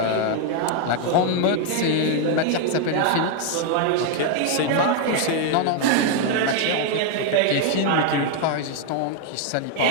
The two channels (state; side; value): different; both; correlation 0.00